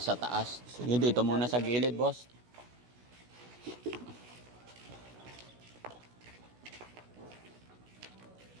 taas. Sige, dito muna sa gilid, boss.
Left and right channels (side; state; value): left; late; 16 ms